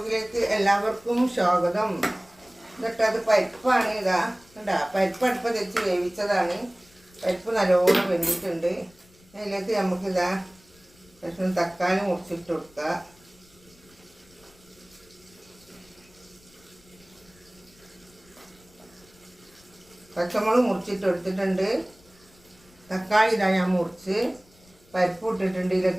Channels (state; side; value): noise; left; rumble, 29 dB below the sound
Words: എല്ലാവർക്കും സ്വാഗതം. എന്നിട്ട് അത് പരിപ്പാണ്. ഇതാ കണ്ടാ, പരിപ്പ് അടുപ്പ് വെച്ച് വേവിച്ചതാണ്. പരിപ്പ് നല്ലോണം വെന്തിട്ടുണ്ട്. അതിലേക്ക് നമുക്കിതാ കഷ്ണം തക്കാളി മുറിച്ചിട്ട് കൊടുക്കുക. പച്ചമുളക് മുറിച്ചിട്ട് എടുത്തിട്ടുണ്ട്. തക്കാളി ഇതാ ഞാൻ മുറിച്ച് പരിപ്പ് ഇട്ടിട്ടുണ്ട്.